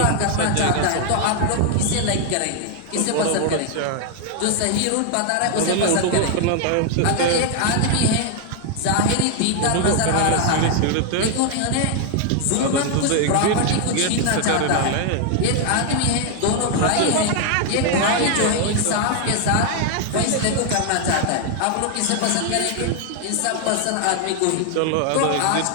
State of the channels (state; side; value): different; both; correlation 0.00